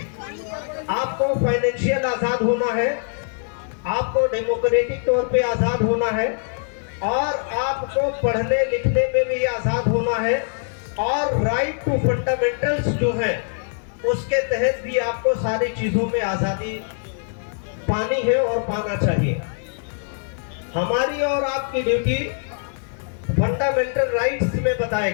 आपको फाइनेंशियल आजाद होना है, आपको डेमोक्रेटिक तौर पे आजाद होना है, और आपको पढ़ने लिखने में भी आजाद होना है, और राइट टू फंडामेंटल्स जो है उसके तहत भी आपको सारी चीजों में आजादी पानी है और पाना चाहिए। हमारी और आपकी ड्यूटी फंडामेंटल राइट्स में बताए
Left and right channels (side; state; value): right; silent; digital silence